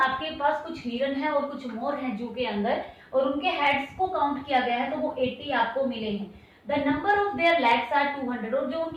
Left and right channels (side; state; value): both; identical; correlation 1.00